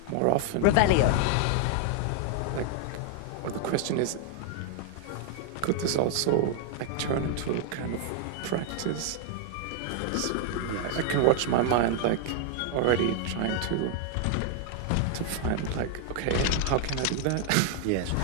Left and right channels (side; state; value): both; different; correlation 0.00